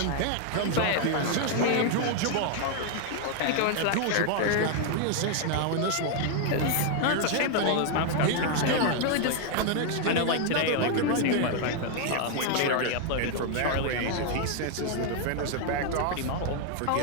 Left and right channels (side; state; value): both; different; correlation 0.00